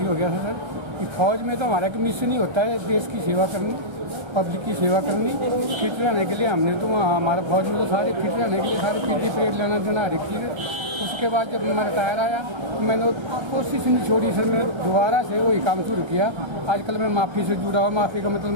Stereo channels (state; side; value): late; left; 1.3 ms